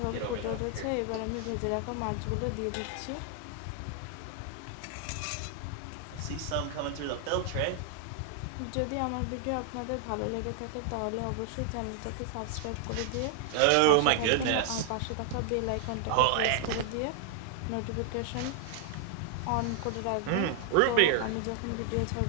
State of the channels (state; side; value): different; both; correlation 0.00